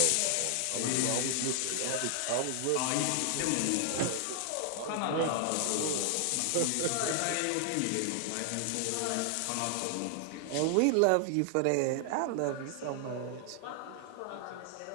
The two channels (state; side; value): different; both; correlation 0.00